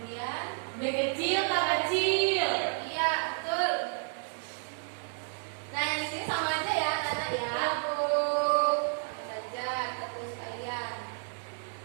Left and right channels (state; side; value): silent; left; 57 dB below the other